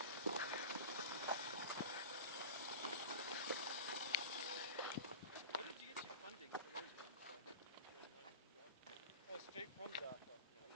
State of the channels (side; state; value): both; inverted; correlation -0.31